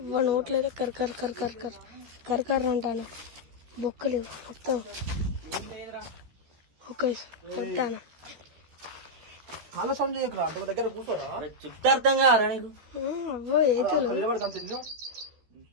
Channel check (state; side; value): late; left; 13 ms